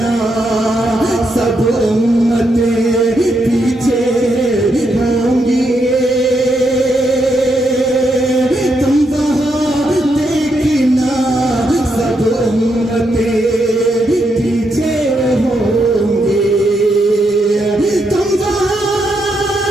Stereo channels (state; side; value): normal; both; correlation 0.80